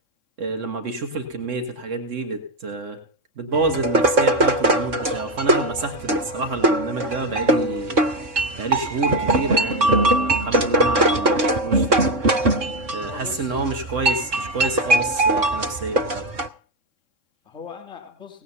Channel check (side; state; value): left; late; 3.6 ms